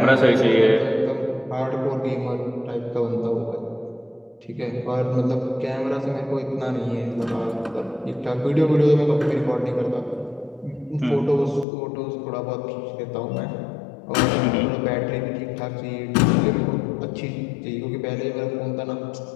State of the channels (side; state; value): right; drops out; at 11.7 s